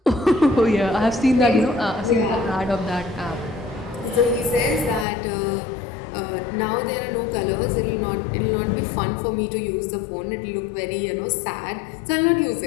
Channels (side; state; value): right; drops out; at 5.1 s